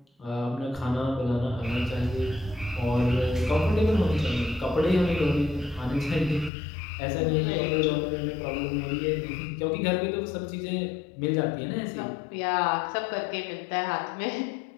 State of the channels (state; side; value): drops out; right; at 6.5 s